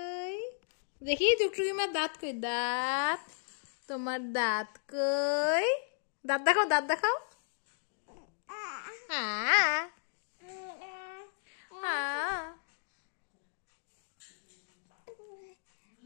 দেখি টুকটুকি মা দাঁত কই? দাঁত, তোমার দাঁত কই? দাঁত দেখাও, দাঁত দেখাও।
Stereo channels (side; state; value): right; silent; digital silence